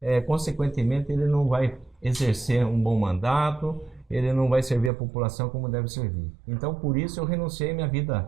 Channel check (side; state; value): left; drops out; at 4.9 s